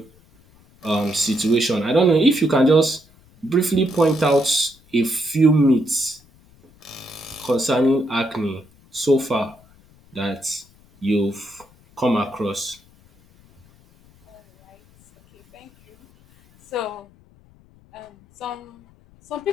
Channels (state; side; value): noise; left; rumble, 29 dB below the sound